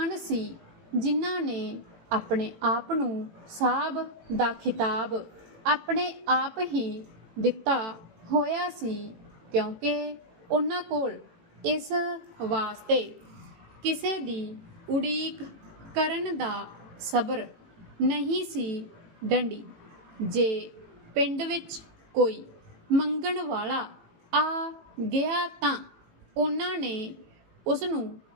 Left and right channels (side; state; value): left; late; 18 ms